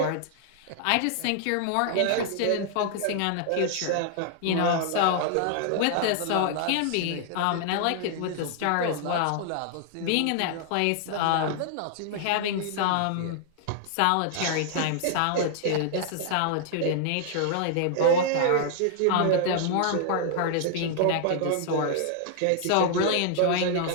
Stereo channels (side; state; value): both; different; correlation -0.01